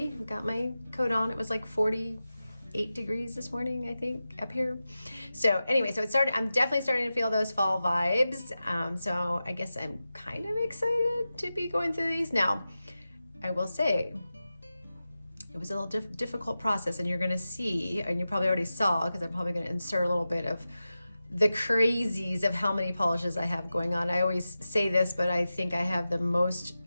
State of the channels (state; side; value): inverted; both; correlation -0.93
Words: Got my coat on. It was like 48 degrees this morning, I think, up here. So anyway, I'm definitely starting to feel those fall vibes. So I guess I'm kind of excited to be going through these. Now, I will say, it was a little difficult process, and you're going to see, and you probably already saw, because I'm probably going to insert a little bit of the crazies of how many polishes I have going on. I always say this, but I think I have the most